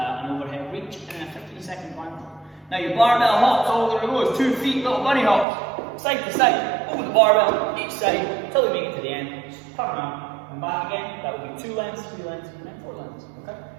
overhead reach, and a 15-second plank. Now your barbell hops, all there goes, 2 feet, little bunny hops, side to side, over the barbell, each side, until we make it to the end. Just turn around and back again. That would be 2 lengths, 3 lengths, and then 4 lengths, okay?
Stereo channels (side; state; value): left; drops out; at 5.5 s